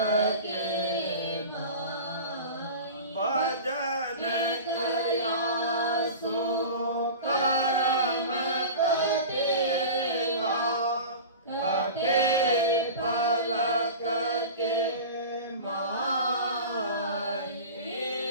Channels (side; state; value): both; inverted; correlation -0.33